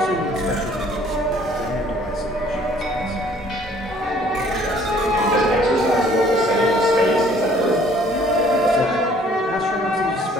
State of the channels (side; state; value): both; normal; correlation 0.57